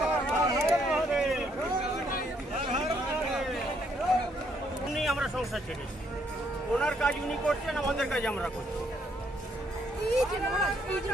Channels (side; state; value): both; normal; correlation 0.71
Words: আমরা সংসার ছেড়েছি, ওনার কাজ উনি করছেন, আমাদের কাজ আমরা করছি।